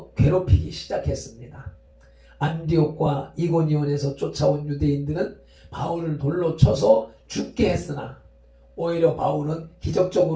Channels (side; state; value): both; identical; correlation 1.00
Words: 괴롭히기 시작했습니다. 안디옥과 이고니온에서 쫓아온 유대인들은 바울을 돌로 쳐서 죽게 했으나 오히려 바울은